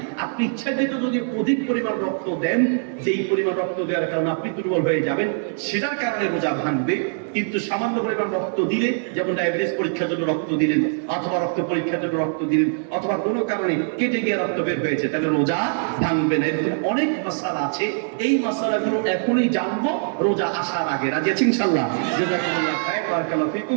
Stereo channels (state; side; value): silent; left; digital silence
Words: আপনি ইচ্ছাকৃত যদি অধিক পরিমাণ রক্ত দেন, যেই পরিমাণ রক্ত দেওয়ার কারণে আপনি দুর্বল হয়ে যাবেন, সেটার কারণে রোজা ভাঙবে। কিন্তু সামান্য পরিমাণ রক্ত দিলে, যেমন ডায়াবেটিস পরীক্ষার জন্য রক্ত দিলেন, অথবা রক্ত পরীক্ষার জন্য রক্ত দিলেন, অথবা কোনো কারণে কেটে গিয়ে রক্ত বের হয়েছে, তাহলে রোজা ভাঙবে না। এরকম অনেক মাসালা আছে। এই মাসালাগুলো এখনই জানবো রোজা আসার আগে। রাজি আছি ইনশাআল্লাহ? জাযাকুমুল্লাহ খায়র, বারাকাল্লাহু